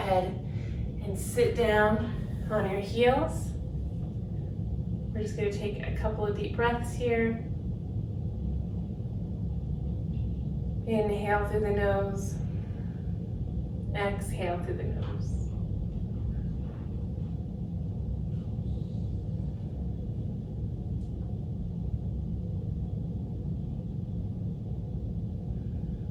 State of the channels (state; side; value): identical; both; correlation 1.00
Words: and sit down on your heels. We're just going to take a couple of deep breaths here. Inhale through the nose. Exhale through the nose.